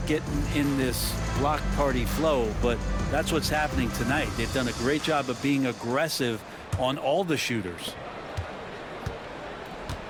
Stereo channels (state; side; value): identical; both; correlation 1.00